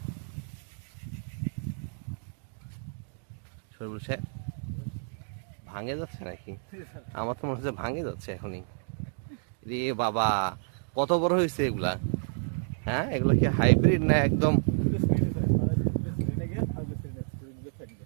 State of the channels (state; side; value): silent; left; digital silence